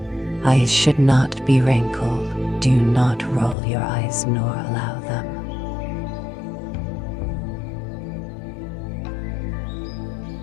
eyes should not be wrinkled. Do not roll your eyes nor allow them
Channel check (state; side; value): drops out; right; at 3.6 s